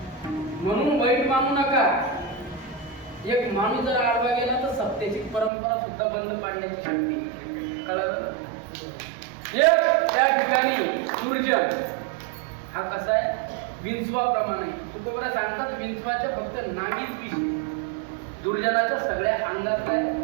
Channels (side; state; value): left; drops out; at 5.5 s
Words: म्हणून वाईट मानू नका. एक माणूस जर आडवा गेला तर सत्तेची परंपरा सुद्धा बंद पाडण्याची शक्ती. कळलं? एक त्या ठिकाणी दुर्जन हा कसा आहे विंचवाप्रमाणे. तुकोबरा सांगतात विंचवाच्या फक्त नागीच विष, दुर्जनाच्या सगळ्या अंगात काय